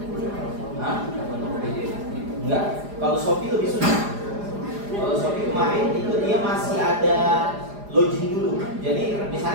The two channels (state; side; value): late; left; 4.9 ms